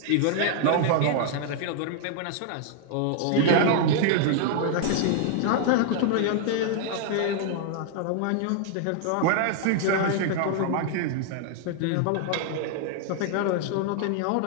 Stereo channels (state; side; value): different; both; correlation 0.00